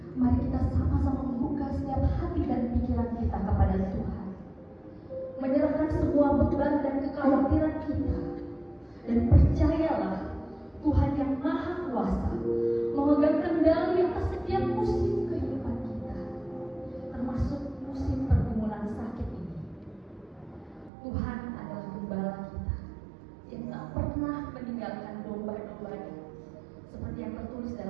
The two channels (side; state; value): left; drops out; at 20.9 s